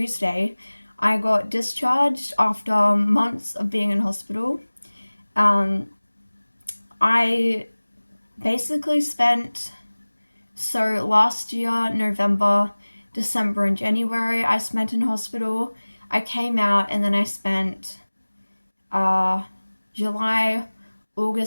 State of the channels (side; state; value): both; inverted; correlation -1.00